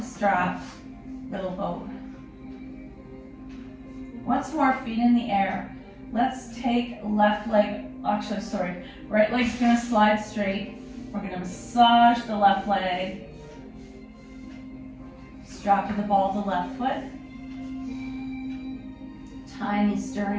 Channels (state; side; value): identical; both; correlation 1.00